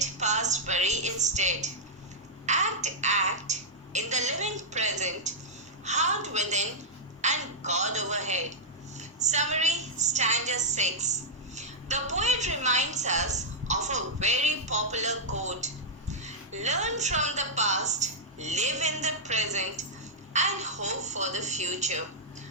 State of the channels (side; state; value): both; normal; correlation -0.08